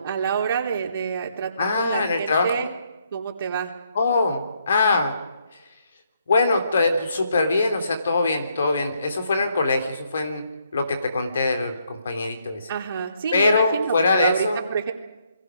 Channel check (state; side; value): inverted; both; correlation -0.73